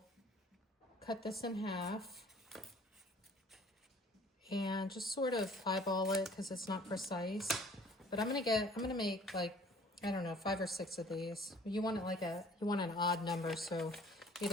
cut this in half and just sort of eyeball it because it's not precise. But I'm gonna make like, I don't know, 5 or 6 of these. You want it like you want an odd number, so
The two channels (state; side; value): normal; both; correlation 0.53